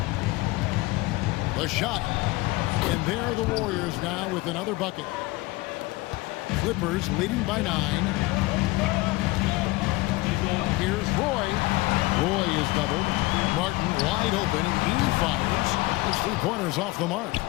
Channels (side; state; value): right; quieter; 21.4 dB